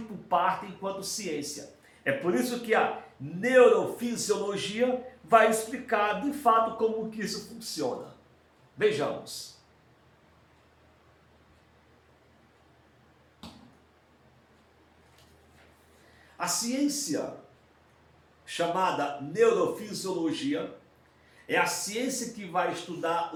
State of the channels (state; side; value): identical; both; correlation 1.00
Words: parte enquanto ciência. É por isso que a neurofisiologia vai explicar de fato como que isso funciona. Vejamos. A ciência chamada neurofisiologia é a ciência que vai estudar